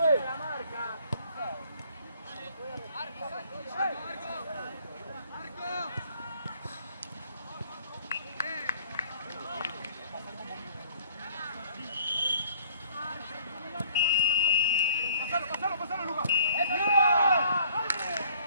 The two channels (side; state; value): both; inverted; correlation -0.57